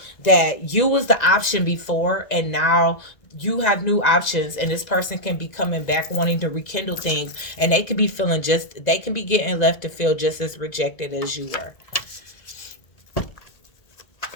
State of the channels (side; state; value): right; late; 1.9 ms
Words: that you was the option before and now you have new options, and this person can be coming back wanting to rekindle things, and they could be feeling just, they can be getting left to feel just as rejected as you were.